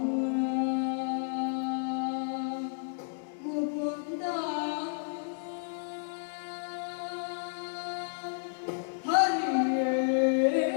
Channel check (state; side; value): silent; right; digital silence